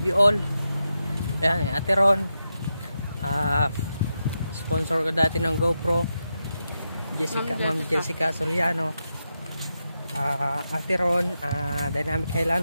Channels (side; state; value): both; inverted; correlation -0.87